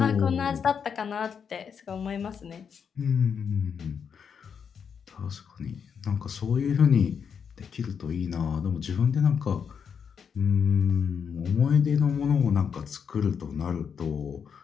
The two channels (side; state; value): right; quieter; 6.9 dB